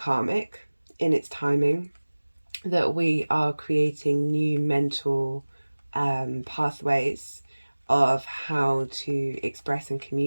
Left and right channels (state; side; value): inverted; both; correlation -1.00